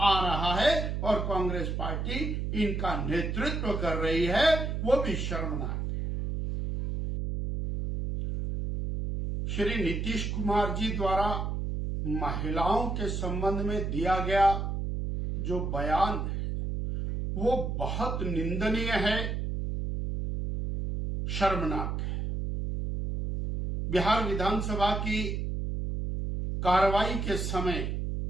रहा है, और कांग्रेस पार्टी इनका नेतृत्व कर रही है, वो भी शर्मनाक है। श्री नीतीश कुमार जी द्वारा महिलाओं के संबंध में दिया गया जो बयान है वो बहुत निंदनीय है, शर्मनाक है। बिहार विधानसभा की कार्रवाई के समय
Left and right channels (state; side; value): noise; right; hum, 2 dB below the sound